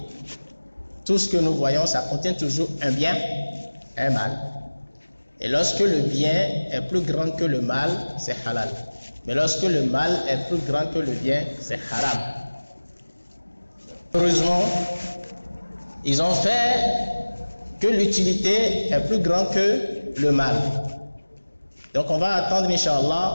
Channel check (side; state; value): both; inverted; correlation -1.00